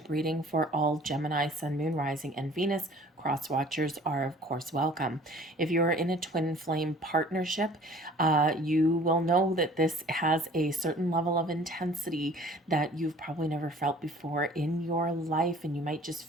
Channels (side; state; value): both; normal; correlation 0.50